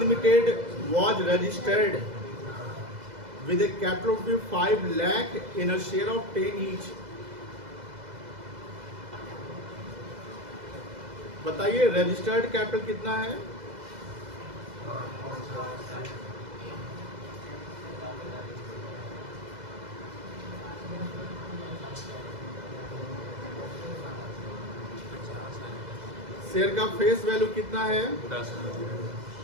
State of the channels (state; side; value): late; left; 2.0 ms